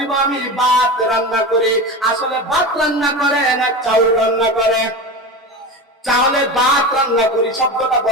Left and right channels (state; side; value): normal; both; correlation 0.26